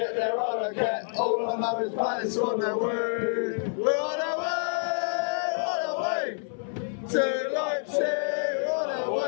there, I don't care. All I know is Paddy's on their way. We're on our way to Leipzig, on our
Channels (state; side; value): silent; right; 58 dB below the other